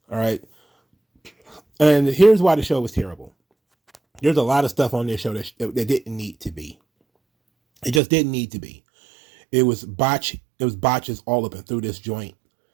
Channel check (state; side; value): drops out; left; at 8.0 s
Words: right. And here's why the show was terrible. There's a lot of stuff on this show that didn't need to be. It just didn't need to be. It was botches all up and through this joint.